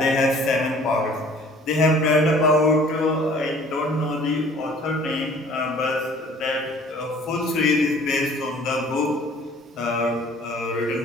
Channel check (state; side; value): normal; both; correlation 0.52